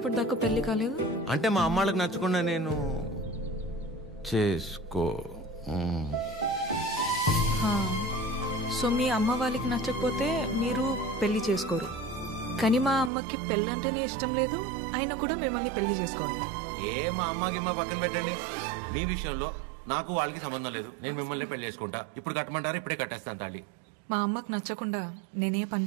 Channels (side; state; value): left; drops out; at 13.1 s